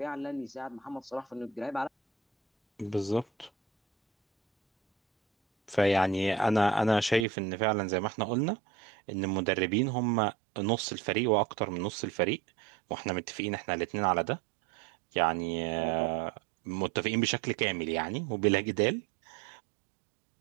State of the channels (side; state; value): left; drops out; at 7.2 s